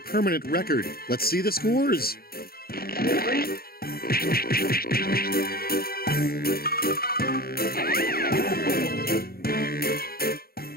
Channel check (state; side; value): late; right; 0.44 ms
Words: record. Let's see the scores.